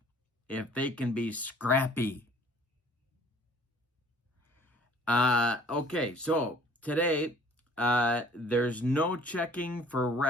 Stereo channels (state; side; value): normal; both; correlation 0.53